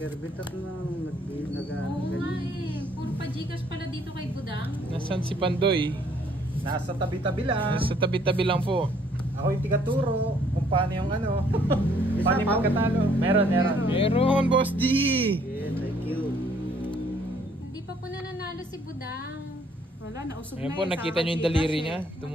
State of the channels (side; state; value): both; normal; correlation 0.64